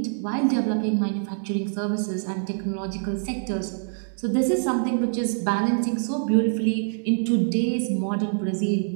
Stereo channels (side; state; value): left; silent; digital silence